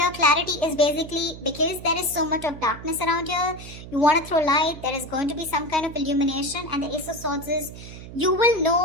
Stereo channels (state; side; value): noise; right; hum, 14 dB below the sound